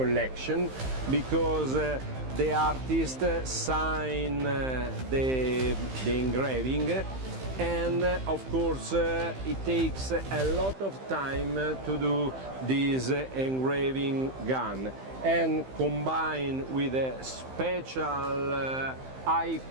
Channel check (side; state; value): left; late; 15 ms